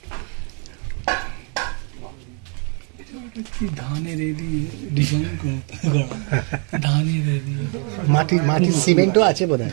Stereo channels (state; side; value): quieter; left; 39.2 dB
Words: ধানের ডিজাইন করা, ধানের মাটির সিমেন্টও আছে বোধহয়।